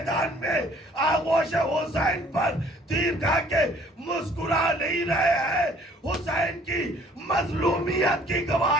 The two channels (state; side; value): normal; both; correlation 0.57